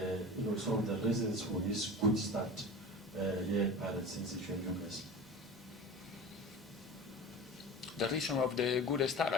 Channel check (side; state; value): both; normal; correlation 0.34